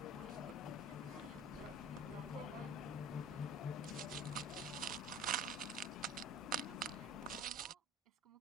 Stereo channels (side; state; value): both; normal; correlation 0.39